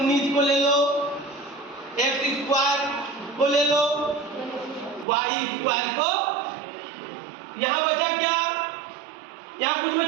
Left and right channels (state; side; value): drops out; left; at 5.1 s